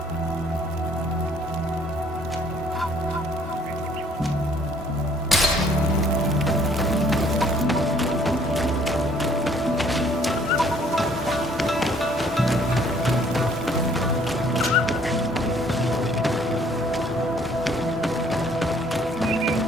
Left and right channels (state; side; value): normal; both; correlation 0.61